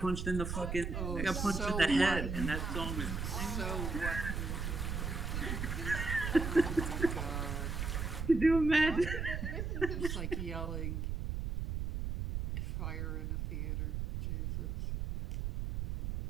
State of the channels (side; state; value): right; noise; rumble, 2 dB below the sound